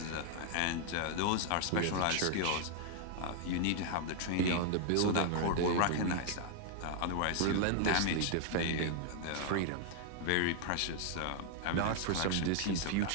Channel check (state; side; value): different; both; correlation 0.00